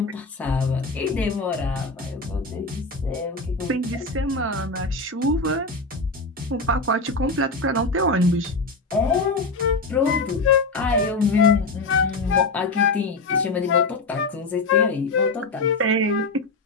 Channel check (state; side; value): quieter; right; 3.4 dB